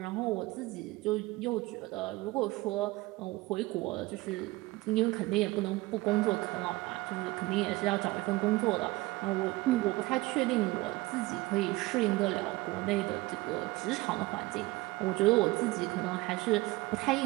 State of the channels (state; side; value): quieter; left; 20.5 dB